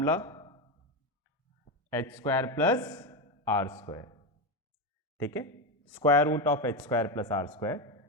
h² प्लस r²। ठीक है, square root of h² plus r²,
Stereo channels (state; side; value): normal; both; correlation 0.12